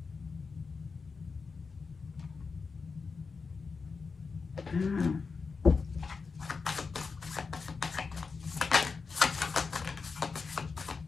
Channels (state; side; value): quieter; right; 4.8 dB